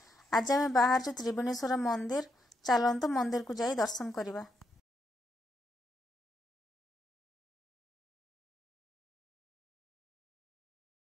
आज आम बाहर त्रिवेणेश्वर मंदिर, चलतु मंदिर को जाई दर्शन करवा।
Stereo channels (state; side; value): normal; both; correlation 0.80